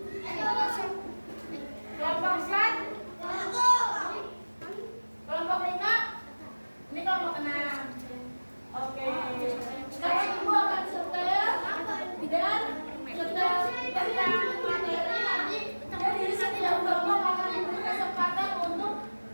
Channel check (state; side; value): inverted; both; correlation -1.00